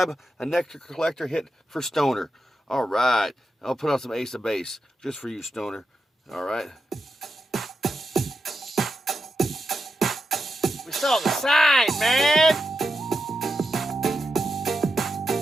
a Nectar Collector hit for Stoner. All right, I'll put on some Ace of Base just for you, Stoner. All right. We saw the sign, man.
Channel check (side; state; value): both; normal; correlation 0.88